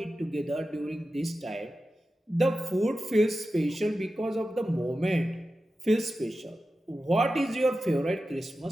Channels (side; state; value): both; normal; correlation 0.93